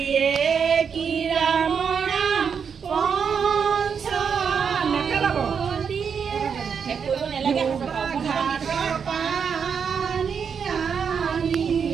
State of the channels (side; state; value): left; quieter; 6.7 dB